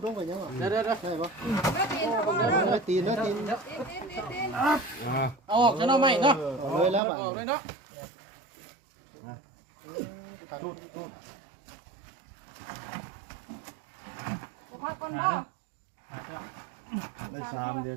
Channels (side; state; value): left; drops out; at 7.0 s